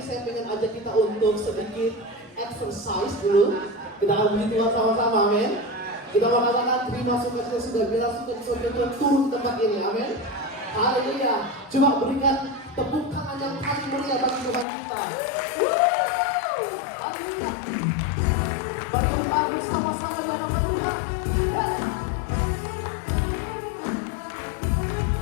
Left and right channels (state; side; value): drops out; right; at 14.7 s